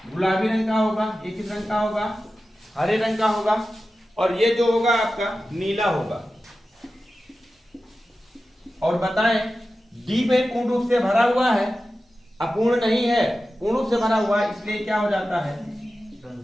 गुलाबी रंग का होगा। ये किस रंग का होगा? हरे रंग का होगा। और ये जो होगा आपका नीला होगा। और बताएं, डी में पूर्ण रूप से भरा हुआ है, अपूर्ण नहीं है, पूर्ण रूप से भरा हुआ है, इसलिए क्या हो जाता है?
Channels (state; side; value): normal; both; correlation 0.94